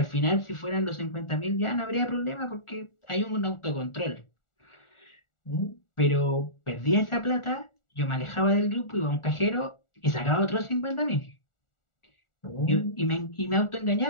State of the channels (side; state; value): right; late; 1.4 ms